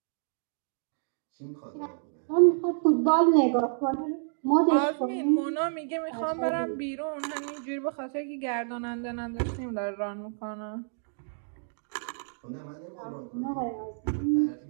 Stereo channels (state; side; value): silent; left; digital silence